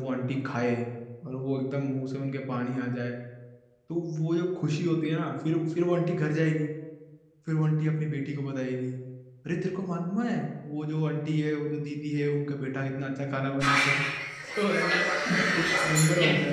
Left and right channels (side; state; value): both; identical; correlation 1.00